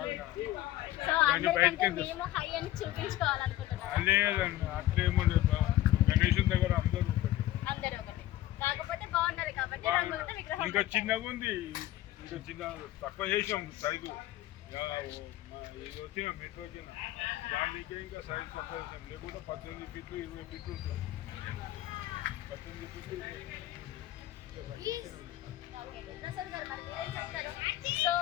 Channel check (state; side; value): quieter; right; 14.7 dB